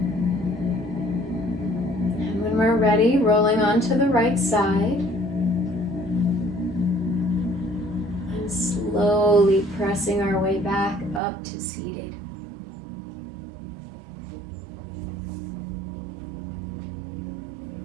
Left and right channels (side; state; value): left; drops out; at 11.2 s